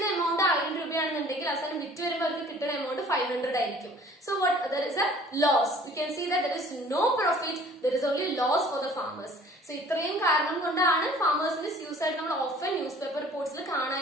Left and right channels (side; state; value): both; normal; correlation 0.51